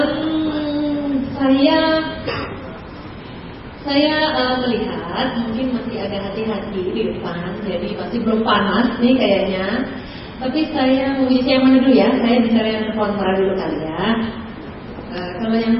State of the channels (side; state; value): both; identical; correlation 1.00